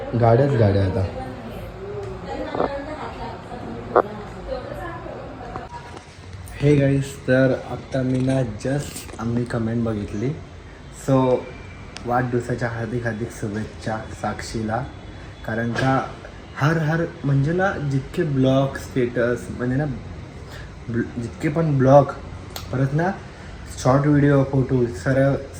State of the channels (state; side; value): identical; both; correlation 1.00